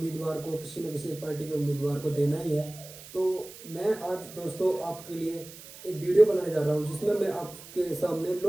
को, किसी न किसी एक पार्टी के उम्मीदवार को देना ही है। तो मैं आज दोस्तों आपके लिए एक वीडियो बनाने जा रहा हूँ जिसमें मैं आपके सामने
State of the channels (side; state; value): right; noise; hiss, 16 dB below the sound